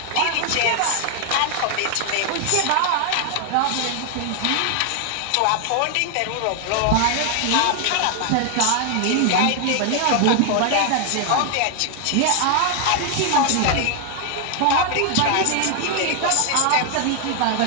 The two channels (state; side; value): different; both; correlation 0.00